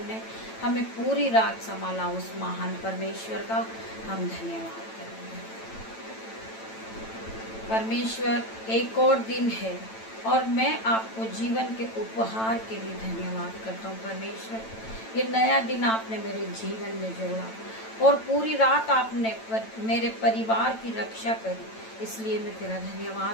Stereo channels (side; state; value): right; late; 9.0 ms